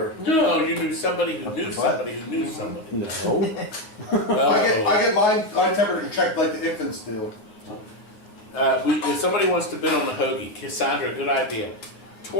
No, you knew somebody who knew somebody who knew somebody. No. I get my temperature checked like the infants do. If somebody wants to bid on the hoagie, Cassandra, good idea.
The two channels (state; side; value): late; right; 9.3 ms